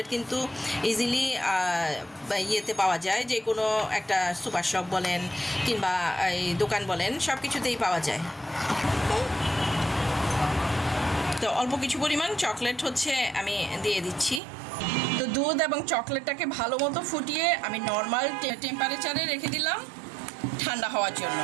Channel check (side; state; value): left; drops out; at 14.4 s